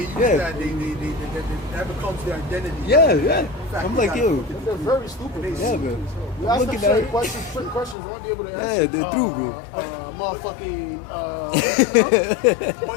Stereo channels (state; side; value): drops out; right; at 8.0 s